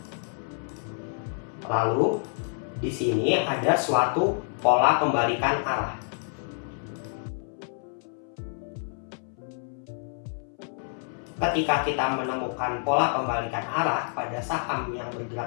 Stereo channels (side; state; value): right; silent; 59 dB below the other